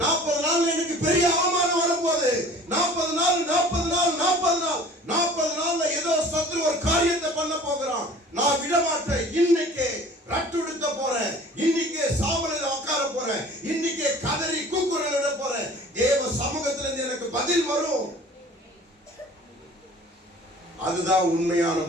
நாள் எனக்கு பெரிய அவமானம் வரப்போகுது. 40 நாள்ல ஏதோ சத்ரு ஒரு காரியத்தை பண்ண போகிறான். நான் விட மாட்டேன். இன்னைக்கு ரட்டுடுத்த போறேன். இன்னைக்கு சாவலில் உட்கார போறேன். இன்னைக்கு கதறி கூக்குரல் விட போறேன். தேவ சமூகத்துல இருந்து எனக்கு பதில் வரும். அதுதான் உண்மையான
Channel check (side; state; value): both; normal; correlation 0.46